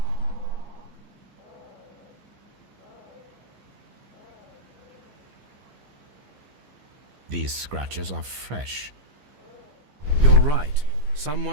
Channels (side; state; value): left; late; 14 ms